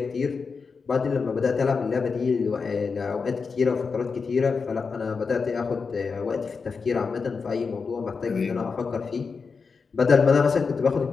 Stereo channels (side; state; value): right; quieter; 5.1 dB